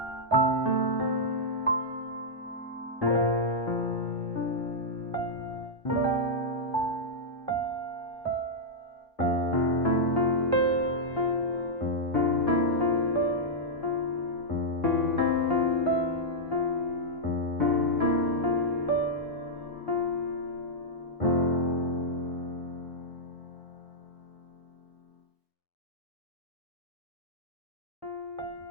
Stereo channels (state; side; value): normal; both; correlation -0.08